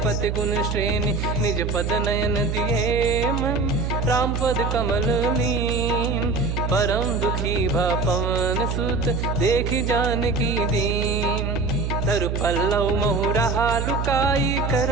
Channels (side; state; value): right; noise; hum, 1 dB below the sound